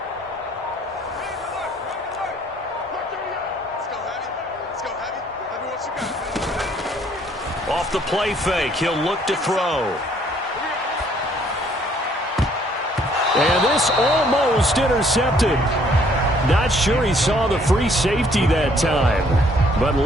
Off the play fake, he'll look to throw. And this almost intercepted. Not sure he saw the free safety that time. But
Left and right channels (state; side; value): normal; both; correlation 0.63